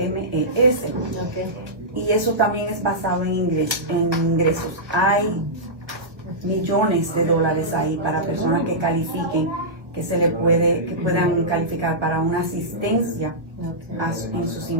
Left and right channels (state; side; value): late; left; 1.3 ms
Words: Y eso también es basado en ingresos. Hay millones de dólares ahí para personas que califiquen, que puedan calificar para una asistencia en sus